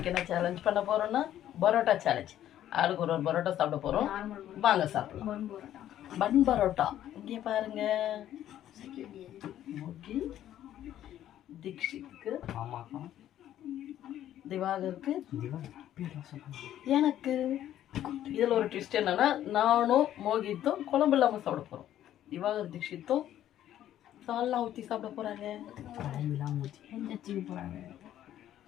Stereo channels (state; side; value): quieter; right; 11.9 dB